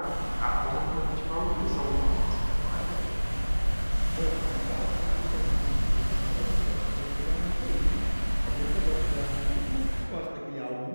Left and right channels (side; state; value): both; inverted; correlation -1.00